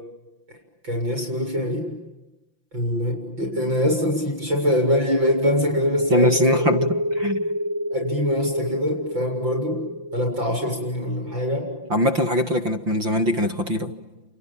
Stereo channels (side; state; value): left; late; 5.8 ms